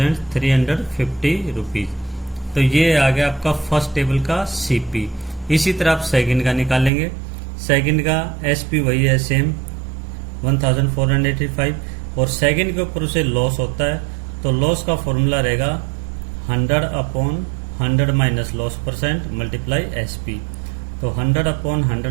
रुपीज। तो ये आ गया आपका फर्स्ट टेबल का सीपी। इसी तरह आप सेकंड का निकालेंगे। सेकंड का एसपी वही है सेम 1485 और सेकंड के ऊपर उसे लॉस होता है, तो तो लॉस का फॉर्मूला रहेगा 100/100 minus loss percent multiply SP। तो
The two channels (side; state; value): left; drops out; at 6.9 s